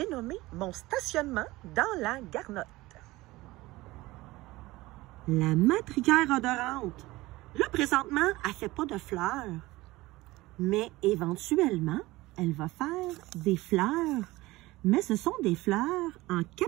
nommé mon stationnement dans la garnotte. La matricaire odorante. Là, présentement, elle ne fait pas de fleurs. Mais éventuellement, elle va faire des fleurs. Mais ce sont des fleurs en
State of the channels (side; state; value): left; quieter; 19.4 dB